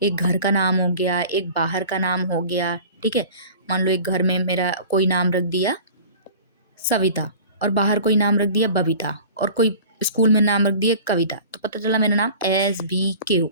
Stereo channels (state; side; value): inverted; both; correlation -0.42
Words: एक घर का नाम हो गया, एक बाहर का नाम हो गया, ठीक है? मान लो एक घर में मेरा कोई नाम रख दिया सविता, और बाहर कोई नाम रख दिया बबीता, और कोई स्कूल में नाम रख दिया कविता, तो पता चला मेरा नाम SBK हो